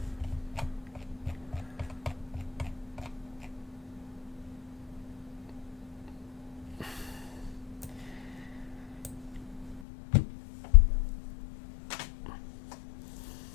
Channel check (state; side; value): drops out; right; at 9.8 s